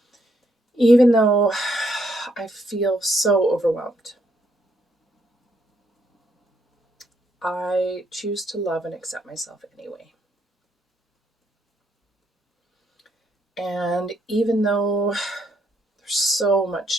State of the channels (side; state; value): both; normal; correlation 0.74